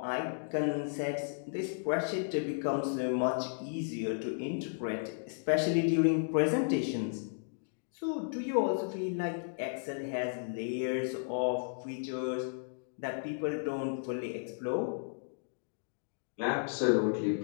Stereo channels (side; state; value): right; silent; digital silence